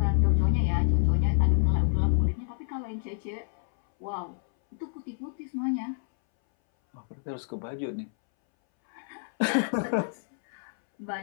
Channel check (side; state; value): right; silent; 59 dB below the other